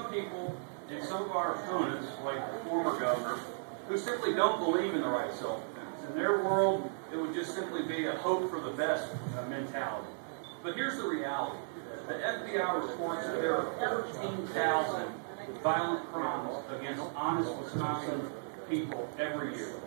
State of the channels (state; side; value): silent; left; 54 dB below the other